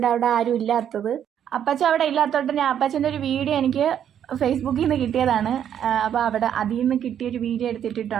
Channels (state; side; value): quieter; left; 9.5 dB